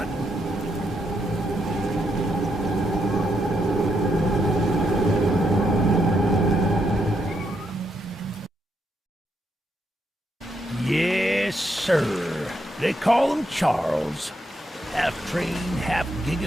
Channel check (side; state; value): both; normal; correlation 0.79